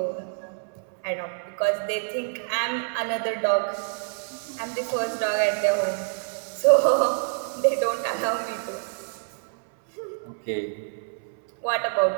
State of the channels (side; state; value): left; silent; 60 dB below the other